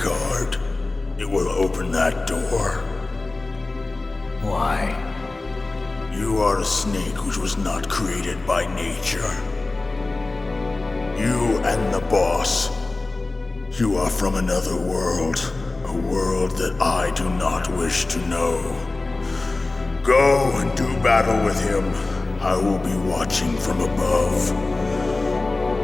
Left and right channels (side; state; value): right; quieter; 3.2 dB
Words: It will open that door. Why? You are a snake which was not created by nature. You and the boss. You are from another world. A world that I do not wish to know. Go and do battle with him. I will be watching from above.